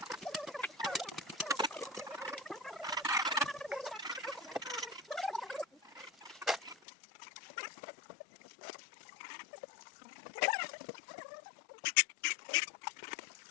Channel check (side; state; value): right; drops out; at 6.8 s